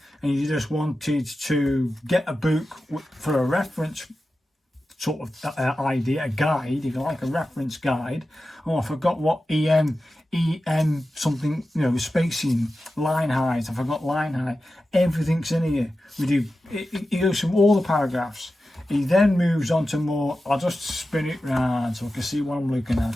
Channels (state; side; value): normal; both; correlation 0.93